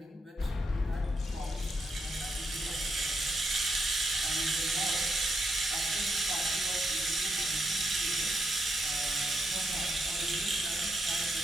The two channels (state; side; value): normal; both; correlation 0.80